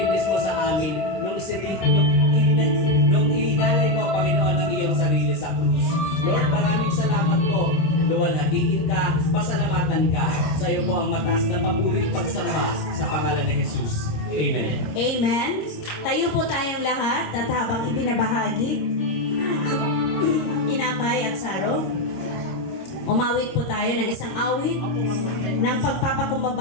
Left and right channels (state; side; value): late; right; 26 ms